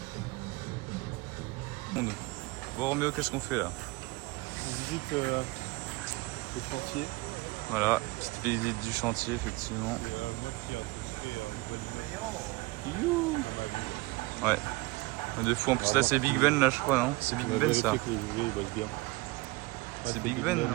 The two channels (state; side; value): quieter; left; 22.5 dB